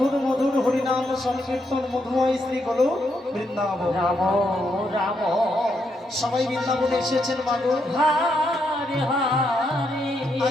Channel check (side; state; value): both; normal; correlation 0.79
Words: মধুর হরিনাম সংকীর্তন মধুময় শ্রী গলো বৃন্দাবন। রাম রাম সবাই বৃন্দাবনে এসেছেন মাগো। হরে হরে